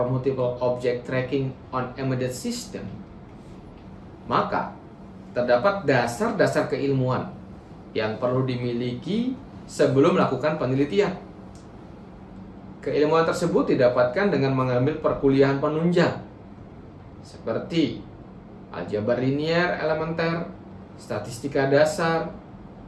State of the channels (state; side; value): identical; both; correlation 1.00